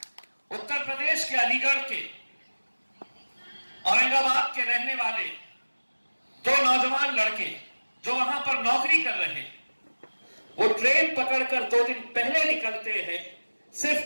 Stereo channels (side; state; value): both; inverted; correlation -1.00